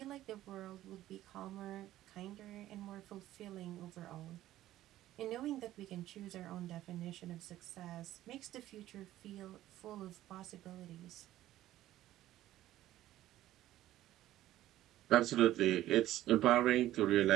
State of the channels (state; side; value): quieter; left; 14.2 dB